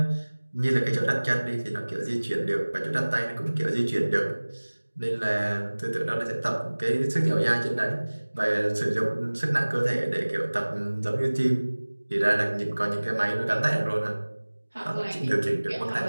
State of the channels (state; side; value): inverted; both; correlation -1.00